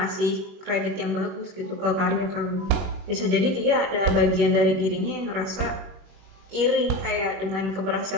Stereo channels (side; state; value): left; late; 21 ms